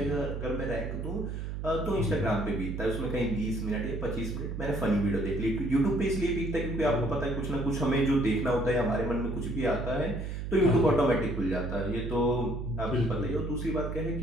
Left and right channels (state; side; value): noise; right; hum, 5 dB below the sound